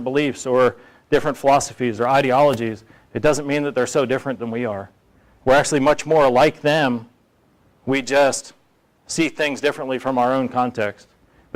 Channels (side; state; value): both; identical; correlation 1.00